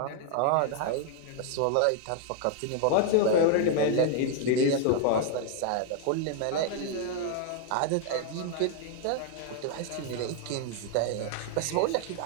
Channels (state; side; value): different; both; correlation 0.00